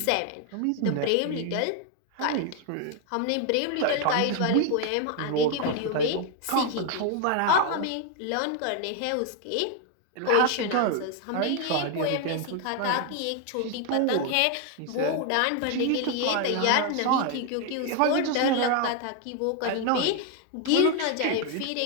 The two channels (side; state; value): both; different; correlation 0.01